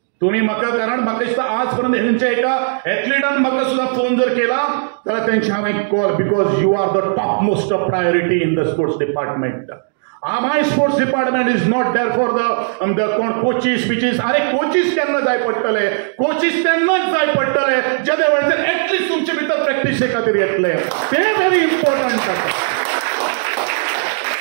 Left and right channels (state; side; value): silent; left; digital silence